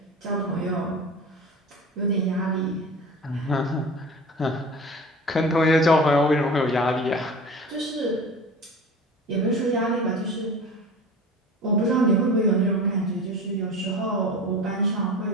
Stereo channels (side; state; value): both; normal; correlation 0.36